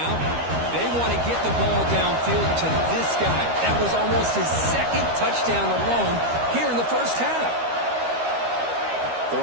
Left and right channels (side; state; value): left; late; 13 ms